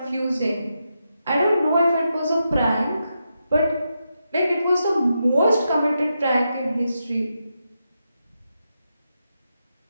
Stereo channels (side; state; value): both; inverted; correlation -0.86